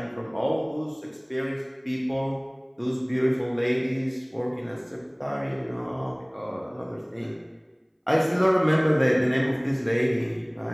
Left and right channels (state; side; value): identical; both; correlation 1.00